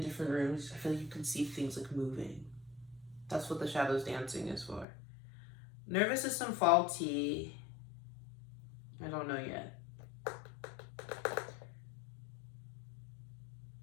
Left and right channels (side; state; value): right; drops out; at 4.9 s